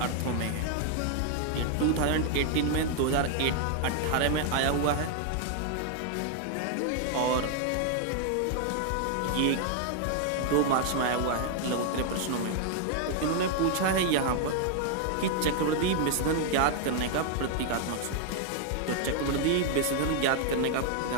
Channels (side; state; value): both; different; correlation 0.00